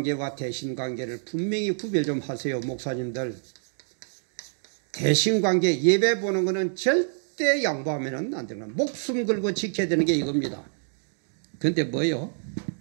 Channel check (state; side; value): silent; left; digital silence